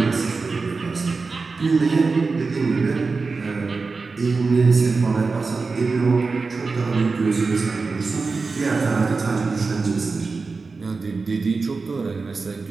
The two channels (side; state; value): left; quieter; 4.2 dB